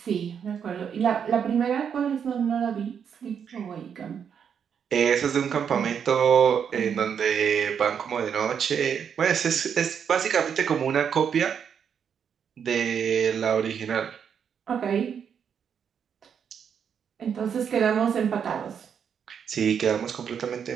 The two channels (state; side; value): quieter; left; 7.6 dB